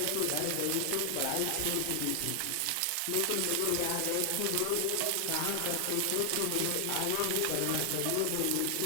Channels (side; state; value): both; different; correlation 0.00